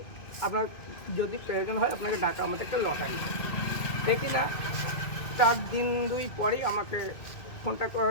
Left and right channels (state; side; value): late; right; 2.2 ms